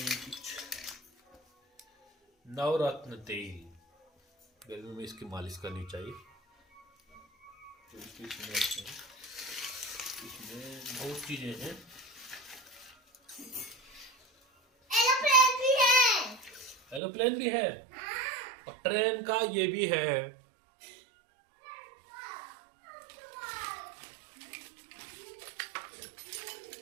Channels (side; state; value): left; drops out; at 17.0 s